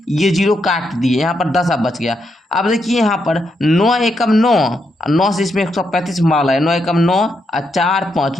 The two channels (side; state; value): both; normal; correlation 0.81